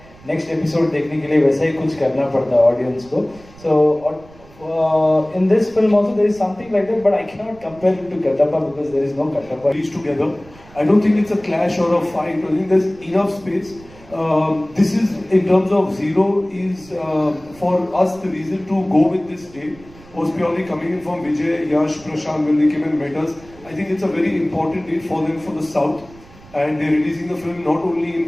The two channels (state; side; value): noise; right; rumble, 23 dB below the sound